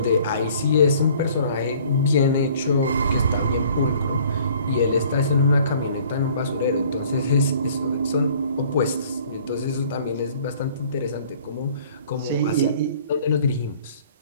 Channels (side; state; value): both; inverted; correlation -0.54